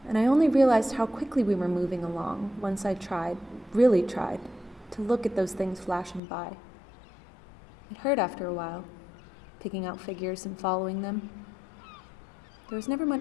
and I only realized how quickly we were moving along once I really tried, to look at those things flashing by. It hurt after a while, picking out figures and following them. There was never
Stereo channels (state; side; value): drops out; right; at 6.2 s